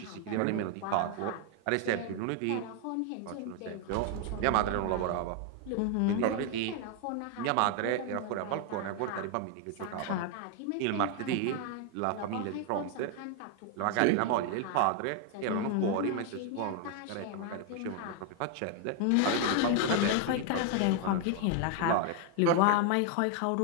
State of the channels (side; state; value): both; different; correlation 0.00